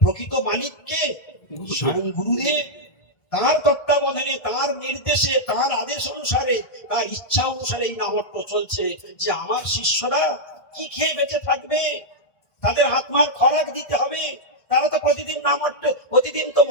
প্রকৃত মালিককে? স্বয়ং গুরুদেব। তার তত্ত্বাবধানে, তার নির্দেশে, তার আদেশ অনুসারে, তার ইচ্ছা অনুসারে এই নামহট্ট চলছে। যে আমার শিষ্যরা কি খেয়ে বেঁচে থাকবে, তাদের আত্মার খোরাক দিতে হবে। তারা তো প্রতিদিন নামহট্ট, প্রতিদিন তো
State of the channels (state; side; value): late; right; 1.7 ms